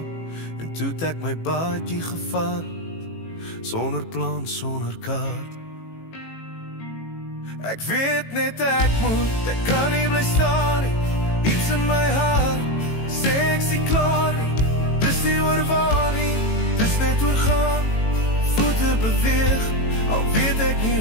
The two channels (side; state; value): right; late; 18 ms